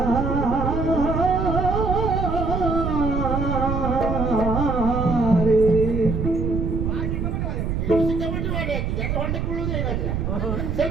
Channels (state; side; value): noise; right; rumble, 1 dB below the sound